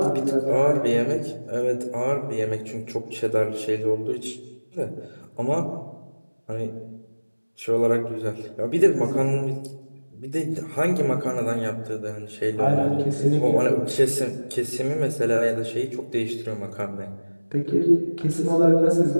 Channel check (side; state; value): both; inverted; correlation -1.00